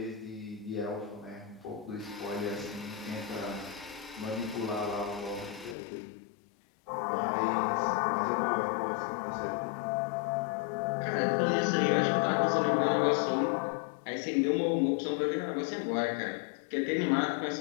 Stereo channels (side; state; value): right; drops out; at 5.8 s